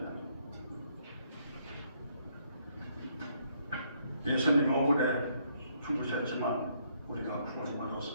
예수님 억울해 죽으셨지만 우리가 구원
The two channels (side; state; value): both; inverted; correlation -0.71